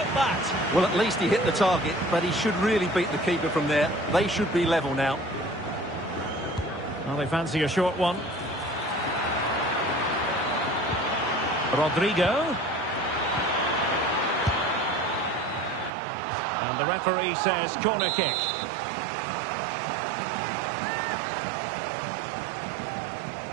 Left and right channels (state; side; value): drops out; left; at 15.9 s